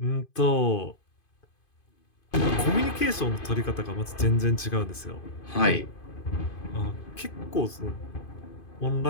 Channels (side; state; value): right; late; 2.5 ms